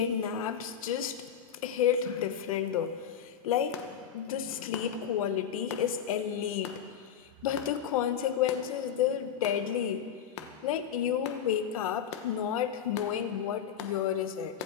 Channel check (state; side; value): quieter; right; 8.6 dB